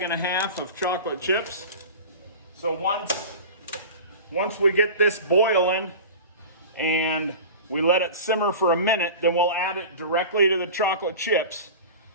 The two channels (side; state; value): both; inverted; correlation -0.34